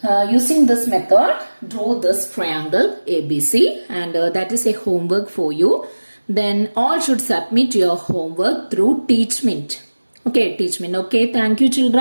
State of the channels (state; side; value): inverted; both; correlation -1.00